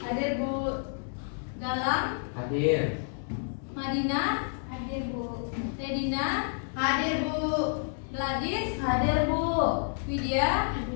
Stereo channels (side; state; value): right; silent; digital silence